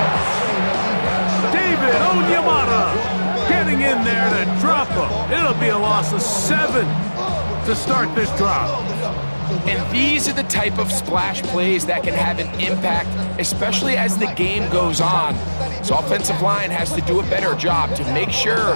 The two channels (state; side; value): inverted; both; correlation -1.00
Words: David Onyemata getting in there to drop him. It'll be a loss of 7 to start this drive. And these are the type of splash plays that can have an impact, especially as the game goes on. So offensive line has to do a better job to make